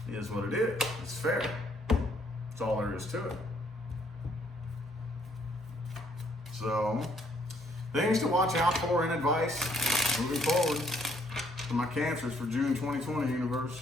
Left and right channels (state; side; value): normal; both; correlation 0.67